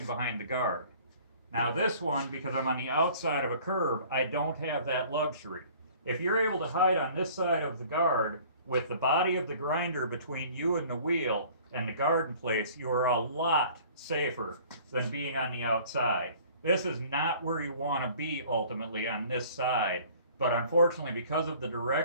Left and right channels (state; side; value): inverted; both; correlation -0.51